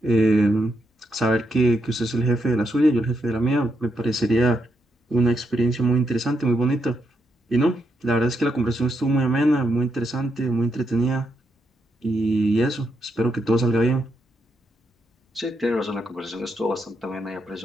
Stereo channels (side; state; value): both; normal; correlation 0.80